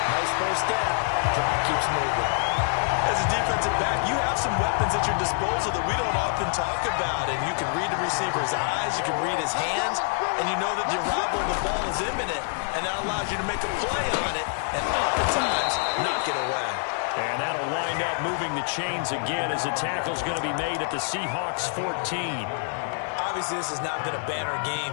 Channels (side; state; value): right; silent; 61 dB below the other